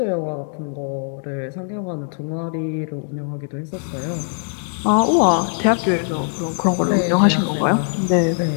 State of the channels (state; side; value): silent; right; digital silence